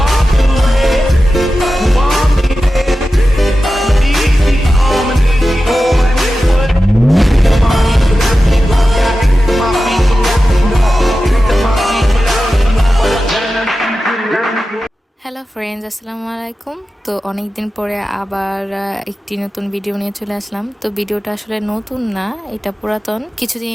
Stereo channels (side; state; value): both; normal; correlation 0.93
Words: away, you want me there. Easy on and easy on and it would. Come on, you should have me go back. My feet so that we know. My feet without me know what I'm gonna do. Hello friends, আসসালামু আলাইকুম। তো অনেক দিন পরে আবার একটি নতুন video নিয়ে চলে আসলাম। তো ভিডিওটা আসলে নতুন না, এটা পুরাতন।